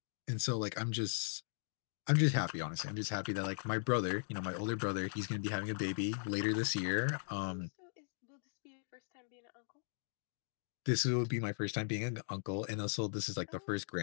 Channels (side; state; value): right; silent; digital silence